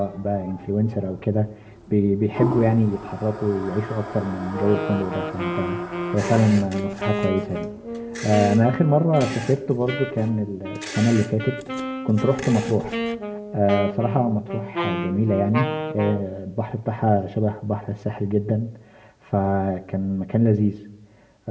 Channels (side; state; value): both; identical; correlation 1.00